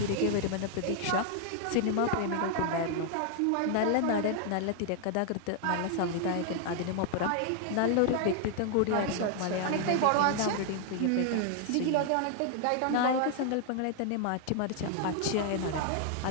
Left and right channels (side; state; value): both; different; correlation 0.00